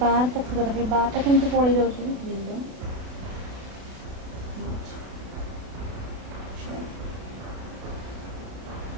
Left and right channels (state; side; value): late; left; 32 ms